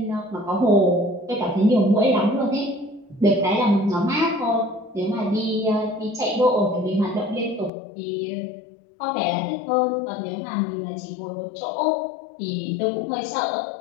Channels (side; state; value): right; drops out; at 7.7 s